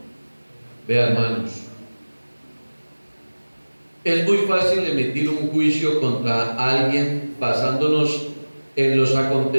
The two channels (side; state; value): both; inverted; correlation -1.00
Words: Vean, hermanos, es muy fácil emitir un juicio contra alguien basándonos en los